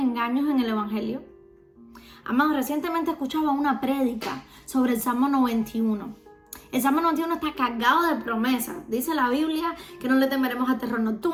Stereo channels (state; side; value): identical; both; correlation 1.00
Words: en el Evangelio? Amado, recientemente escuchaba una prédica sobre el Salmo 91. El Salmo 91 está cargado de promesas. Dice la Biblia que no le temeremos al terror